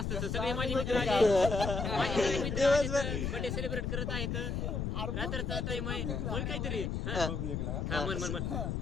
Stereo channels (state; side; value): noise; left; rumble, 1 dB below the sound